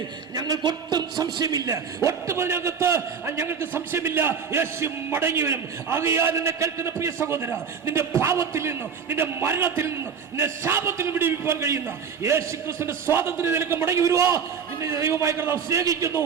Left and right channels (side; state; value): left; quieter; 6.7 dB